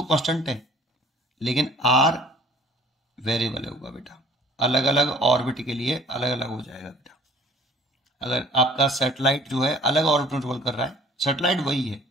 कांस्टेंट है लेकिन आर वेरिएबल होगा बेटा, अलग अलग ऑर्बिट के लिए अलग अलग हो जाएगा बेटा। अगर आपका सैटेलाइट जो है अलग ऑर्बिट ट्रेवल कर रहा है, सैटेलाइट वही है,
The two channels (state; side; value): normal; both; correlation 0.52